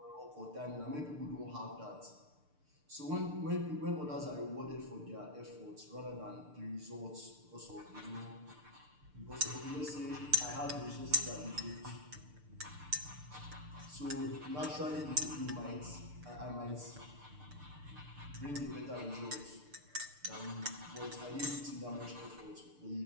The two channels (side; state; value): left; late; 6.7 ms